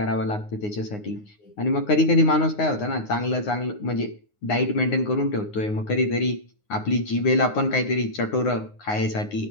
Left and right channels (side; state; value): right; late; 9.6 ms